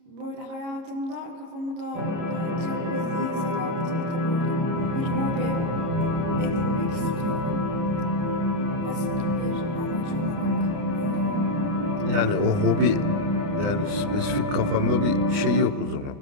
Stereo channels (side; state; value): left; late; 30 ms